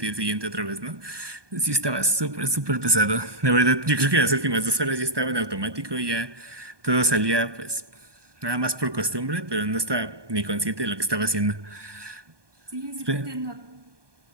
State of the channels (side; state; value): left; late; 1.2 ms